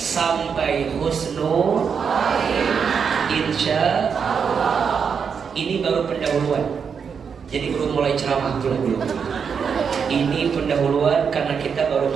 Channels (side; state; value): left; quieter; 6.5 dB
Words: husnul. Insya Allah. Ini baru pendahuluan. Jadi belum mulai ceramah belum. Ini pendahuluan karena kita baru